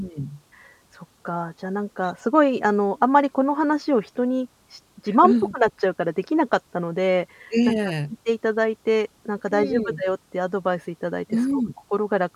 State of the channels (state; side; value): identical; both; correlation 1.00